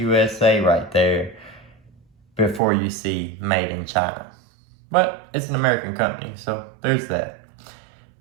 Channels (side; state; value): left; drops out; at 2.6 s